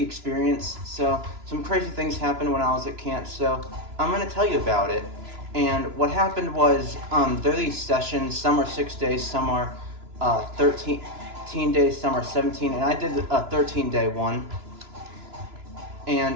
experience. So, some crazy things happened when I was at camp. So, I'm gonna tell you about it. And what happened was, there are these sessions. Some are 6 days, some are 13 days, some are 17. And I did a 13-day one.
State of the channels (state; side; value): late; left; 2.9 ms